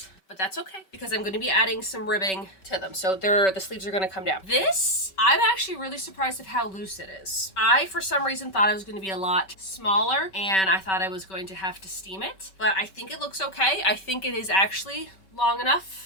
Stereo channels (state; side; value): late; right; 5.2 ms